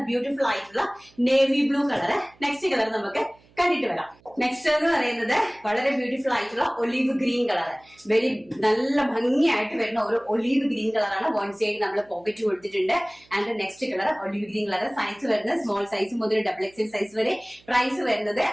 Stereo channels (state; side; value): noise; right; hum, 30 dB below the sound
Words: ബ്യൂട്ടിഫുൾ ആയിട്ടുള്ള navy blue colour. Next colour നമുക്ക് കണ്ടിട്ട് വരാം. നെക്സ്റ്റ് എന്ന് പറയുന്നത് വളരെ ബ്യൂട്ടിഫുൾ ആയിട്ടുള്ള ഒലീവ് ഗ്രീൻ കളർ. വെരി നല്ല ഭംഗിയായിട്ട് വരുന്ന ഒരു ഒലീവ് ഗ്രീൻ കളറാണ്. വൺ സൈഡ് നമ്മൾ പോക്കറ്റ് കൊടുത്തിട്ടുണ്ട്. And next colour olive green colour. Size വരുന്നത് സ്മോൾ സൈസ് മുതൽ ഡബിൾ എക്സൽ സൈസ് വരെ. പ്രൈസ് വരുന്നത്